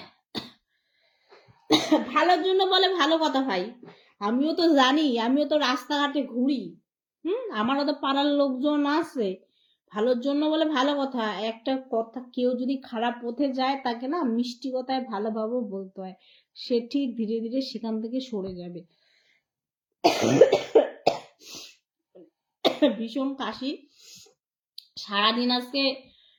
ভালোর জন্য বলে ভালো কথা ভাই, আমিও তো জানি, আমিও তো রাস্তাঘাটে ঘুরি, আমারও তো পাড়ার লোকজন আছে। ভালোর জন্য বলে ভালো কথা, একটা কথা, কেউ যদি খারাপ পথে যায় তাকে না মিষ্টি কথায় ভালোভাবে বলতে হয়, সে ঠিক ধীরে ধীরে সেখান থেকে সরে যাবে। ভীষণ কাশি, সারাদিন আজকে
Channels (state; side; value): identical; both; correlation 1.00